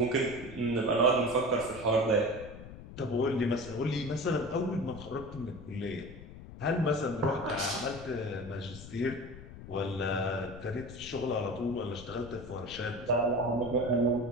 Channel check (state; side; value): noise; left; rumble, 14 dB below the sound